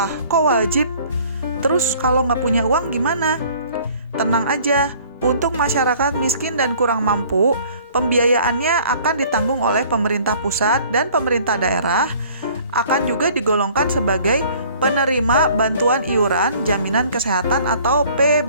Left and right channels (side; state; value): both; inverted; correlation -0.53